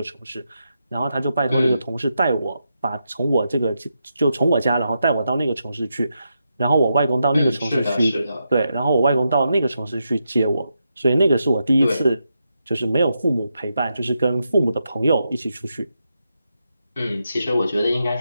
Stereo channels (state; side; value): inverted; both; correlation -0.85